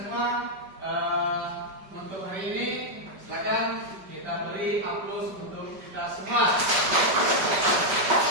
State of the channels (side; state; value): left; late; 5.2 ms